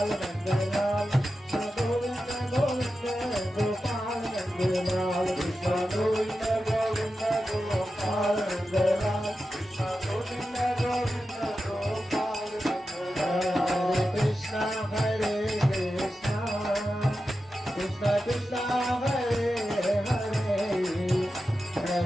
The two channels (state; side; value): normal; both; correlation 0.91